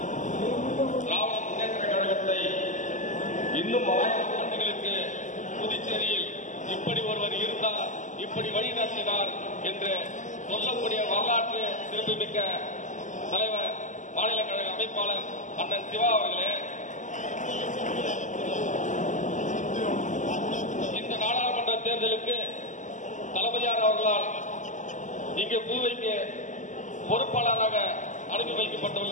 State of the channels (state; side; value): late; right; 0.36 ms